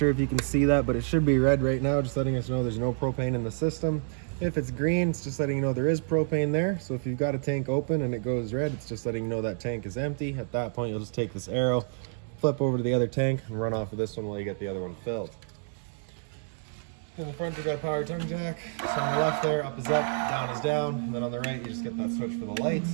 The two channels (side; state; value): left; silent; 59 dB below the other